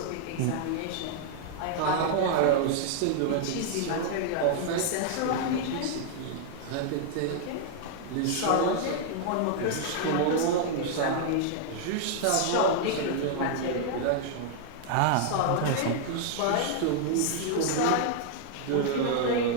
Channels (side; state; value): both; different; correlation -0.01